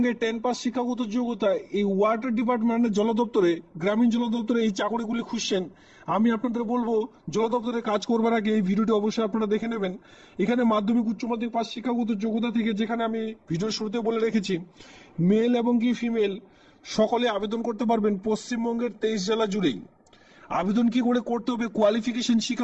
10 পাস শিক্ষাগত যোগ্যতায় এই ওয়াটার ডিপার্টমেন্টের জল দপ্তরে, গ্রামীণ জল দপ্তরে এই চাকরিগুলি খুঁজছেন, আমি আপনাদের বলবো জল দপ্তরে কাজ করবার আগে এই ভিডিওটি অবশ্যই আপনারা দেখে নেবেন। এখানে মাধ্যমিক উচ্চ মাধ্যমিক পাস শিক্ষাগত যোগ্যতা থেকে, যেখানে আমি ভিডিওর শুরুতে বলে রেখেছি, মেল এবং কি ফিমেল সকলে আবেদন করতে পারবেন পশ্চিমবঙ্গের 23 জেলা জুড়েই। আবেদন কি করে করতে হবে, কোয়ালিফিকেশন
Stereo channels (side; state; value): both; identical; correlation 1.00